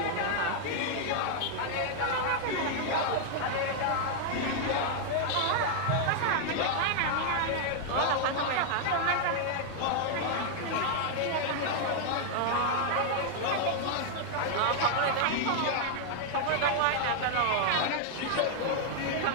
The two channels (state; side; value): different; both; correlation 0.00